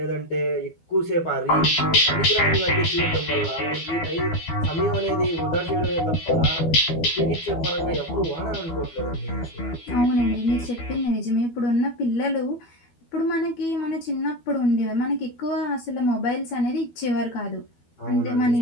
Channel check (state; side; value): late; right; 12 ms